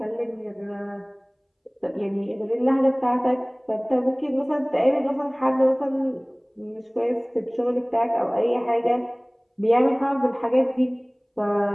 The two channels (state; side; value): identical; both; correlation 1.00